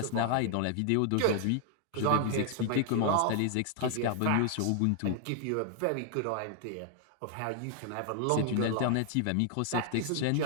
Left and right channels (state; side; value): different; both; correlation 0.00